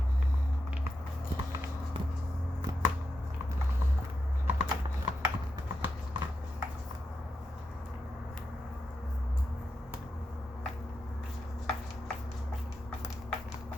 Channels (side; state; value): both; normal; correlation 0.87